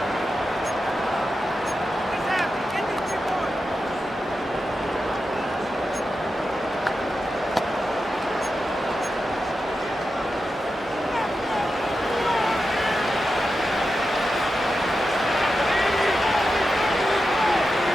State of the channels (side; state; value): both; normal; correlation 0.90